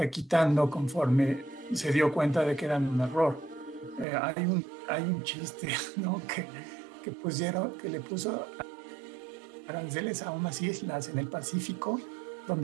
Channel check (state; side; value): drops out; left; at 4.0 s